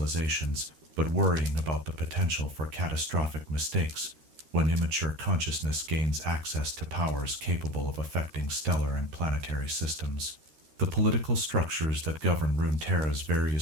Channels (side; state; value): left; late; 13 ms